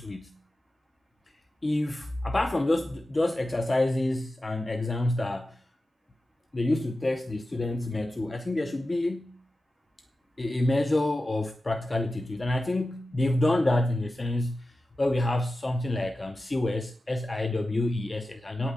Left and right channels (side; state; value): both; normal; correlation 0.93